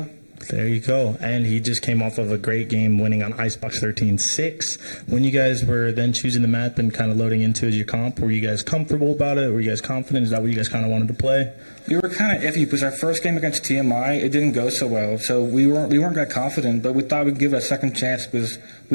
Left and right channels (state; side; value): inverted; both; correlation -1.00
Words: There you go. And he just came off of a great game winning on Icebox 13-6. When you guys were then choosing the map and kind of loading into as your comp, were you guys comfortable about it? Were you guys confident? Is that what you guys kind of wanted to play? We were kind of iffy because our first game against TMI, it didn't go so well. So we weren't that confident, but we thought we'd give it a second chance because